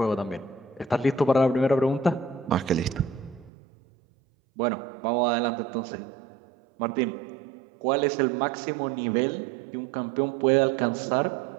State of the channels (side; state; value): left; drops out; at 3.5 s